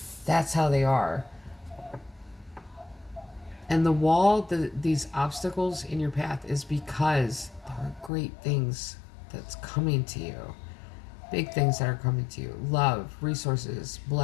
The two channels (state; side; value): drops out; right; at 8.1 s